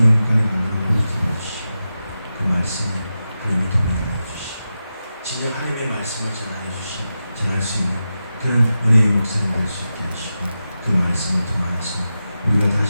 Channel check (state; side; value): inverted; both; correlation -0.91